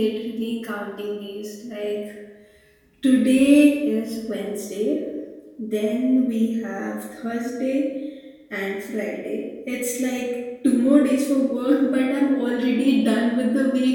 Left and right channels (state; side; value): identical; both; correlation 1.00